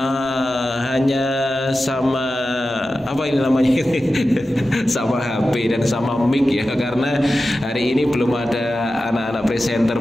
hanya sama apa ini namanya sama HP dan sama mic ya, karena hari ini belum ada anak-anak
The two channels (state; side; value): normal; both; correlation 0.93